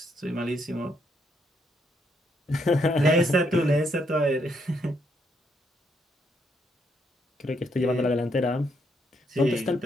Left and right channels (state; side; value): normal; both; correlation 0.74